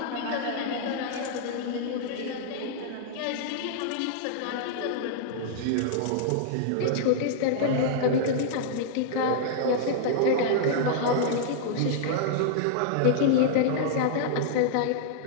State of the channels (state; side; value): different; both; correlation -0.01